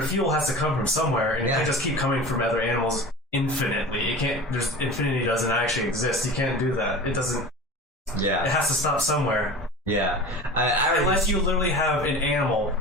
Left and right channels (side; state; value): both; normal; correlation 0.35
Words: fuel has to come from somewhere, and it can't just keep coming from other animals infinitely. It can't. There's infinity doesn't actually exist. You can't do that. It doesn't. Yeah. It has to stop somewhere. Yeah. Unless you literally have an animal